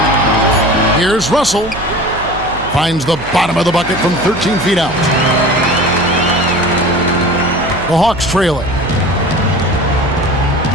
Here's Russell. Finds the bottom of the bucket from 13 feet out. The Hawks trail it.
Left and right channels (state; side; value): noise; right; hum, 13 dB below the sound